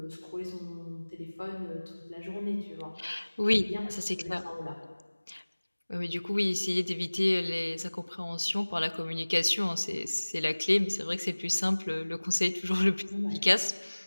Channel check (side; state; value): both; inverted; correlation -1.00